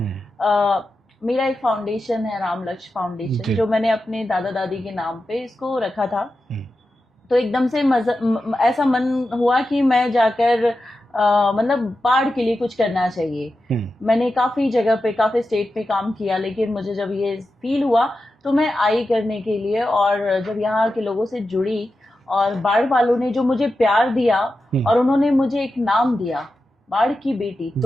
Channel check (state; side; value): normal; both; correlation 0.91